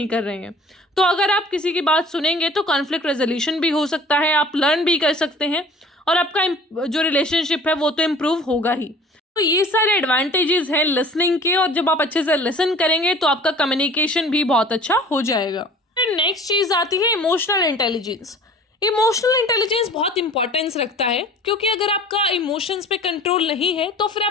कर रहे हैं। तो अगर आप किसी की बात सुनेंगे तो कॉन्फ्लिक्ट रेजोल्यूशन भी हो सकता है, आप लर्न भी कर सकते हैं, और आपका जो रिलेशनशिप है वो तो इम्प्रूव होगा ही। तो ये सारे एडवांटेजेस हैं लिसनिंग के, और जब आप अच्छे से लिसन करेंगे तो आपका कम्युनिकेशन भी बहुत अच्छा हो जाएगा। फिर नेक्स्ट चीज़ आती है इमोशनल इंटेलिजेंस। इमोशनल इंटेलिजेंस बहुत इंपॉर्टेंस रखता है, क्योंकि अगर आपका इमोशंस पे कंट्रोल नहीं है तो फिर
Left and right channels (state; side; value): normal; both; correlation 0.47